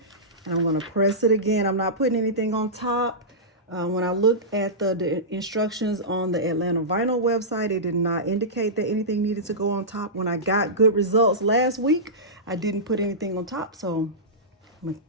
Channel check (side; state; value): both; normal; correlation -0.17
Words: and I'm going to press it again. I'm not putting anything on top. When I looked at the instructions on the Atlanta Vinyl website, it did not indicate that anything needed to go on top. When I got good results last week, I didn't put anything on top. So I'm going to